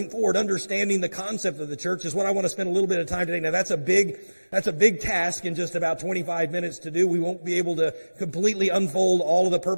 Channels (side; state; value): both; inverted; correlation -1.00